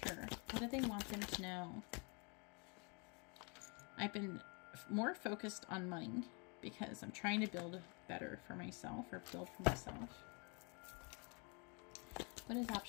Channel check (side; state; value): right; quieter; 33.5 dB